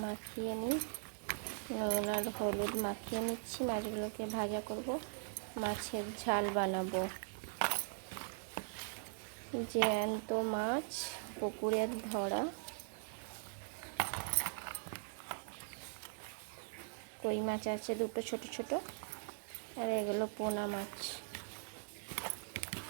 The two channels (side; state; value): left; silent; 51 dB below the other